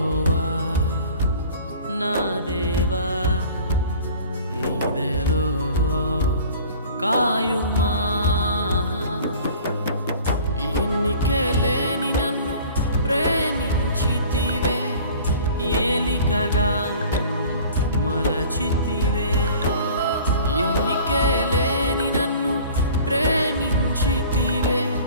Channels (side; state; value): both; inverted; correlation -0.46